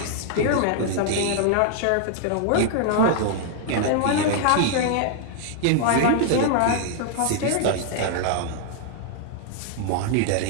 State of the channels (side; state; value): both; different; correlation 0.00